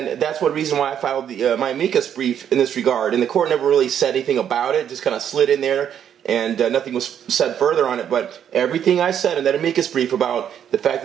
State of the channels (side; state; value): left; quieter; 9.2 dB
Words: that's one reason why I filed my amicus brief in this regard. And the court never really said anything about it; just kind of slid in there. and nothing was said further on it. But everything I said in that amicus brief about the fact